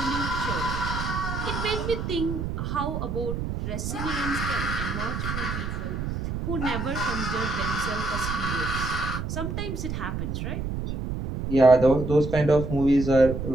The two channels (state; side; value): noise; right; rumble, 4 dB below the sound